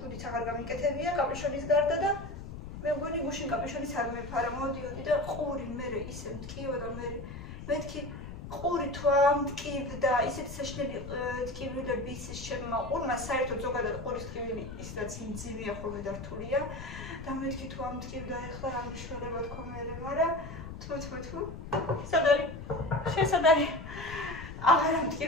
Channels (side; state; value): left; noise; rumble, 10 dB below the sound